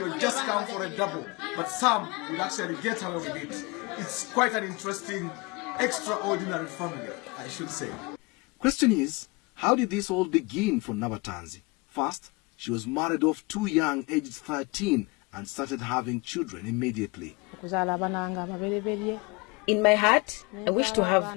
just come for a double. But some would actually get away with it. It's quite an interesting, extraordinary family, I should say. Question is, how did this all begin for Nabatanzi? First, she was married off too young, aged 13, and started having children immediately. In my heart, I wish to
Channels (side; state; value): right; quieter; 26.9 dB